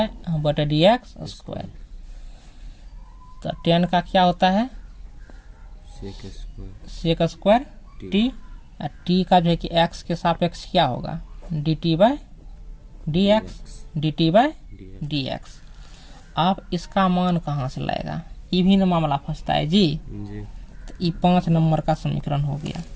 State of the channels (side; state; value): both; identical; correlation 1.00